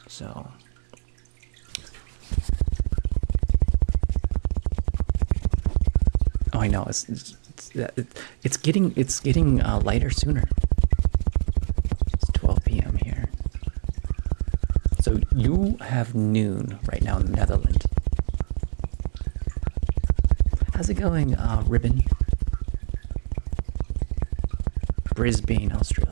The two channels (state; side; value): silent; left; digital silence